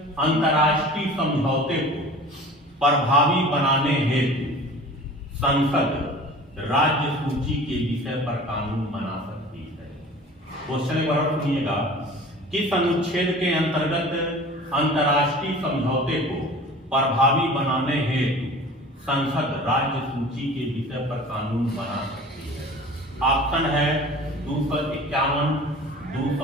अंतर्राष्ट्रीय समझौते को प्रभावी बनाने हेतु संसद राज्य सूची के विषय पर कानून बना सकती है। क्वेश्चन एक बार सुनिएगा, किस अनुच्छेद के अंतर्गत अंतर्राष्ट्रीय समझौते को प्रभावी बनाने हेतु संसद राज्य सूची के विषय पर कानून बना सकती है? ऑप्शन है 251,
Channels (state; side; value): normal; both; correlation 0.41